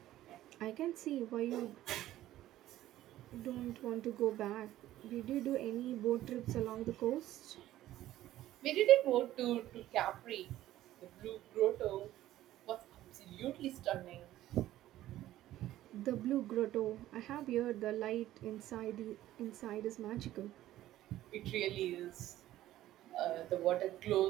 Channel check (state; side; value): quieter; left; 14.2 dB